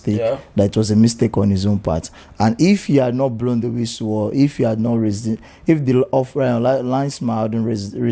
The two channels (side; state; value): both; identical; correlation 1.00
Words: that it was a mistake on his own part. And if he had not blown the whistle, or if he had not raised it, if the linesman hadn't